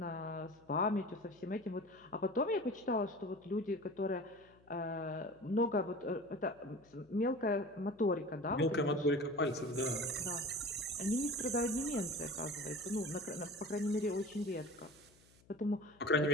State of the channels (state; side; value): noise; left; hum, 28 dB below the sound